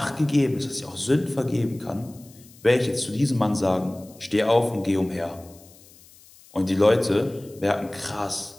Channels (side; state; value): left; noise; hiss, 25 dB below the sound